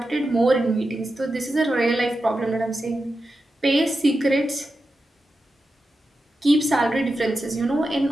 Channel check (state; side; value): normal; both; correlation 0.90